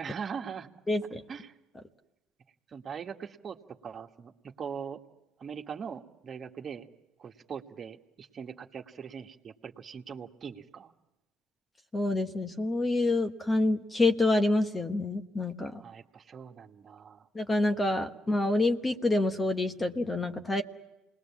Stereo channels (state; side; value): normal; both; correlation 0.85